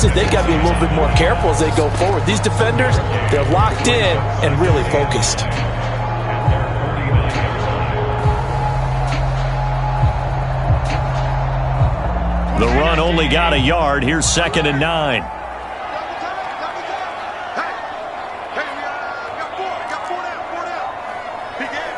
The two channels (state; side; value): identical; both; correlation 1.00